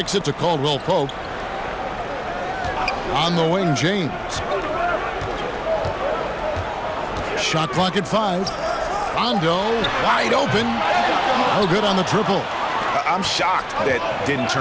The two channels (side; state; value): both; identical; correlation 1.00